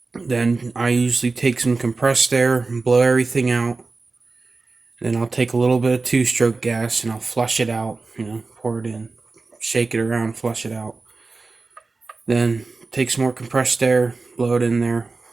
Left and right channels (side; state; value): left; quieter; 3.8 dB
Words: Then I usually take some compressed air and blow everything out. Then I'll take a little bit of 2-stroke gas and I'll flush it out. Pour it in, shake it around, flush it out. Then take some more compressed air, blow it in there,